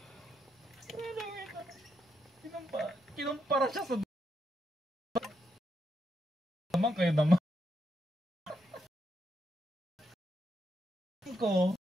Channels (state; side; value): normal; both; correlation 0.80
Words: Kinumpara siya sa naman kayo naman. Ko